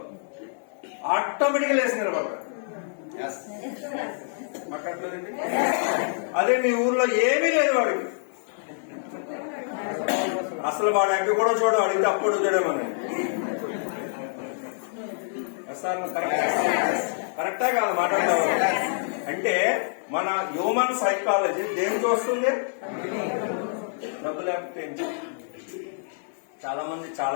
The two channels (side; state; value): right; silent; digital silence